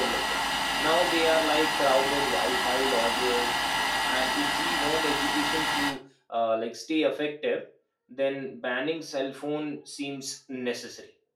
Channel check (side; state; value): both; identical; correlation 1.00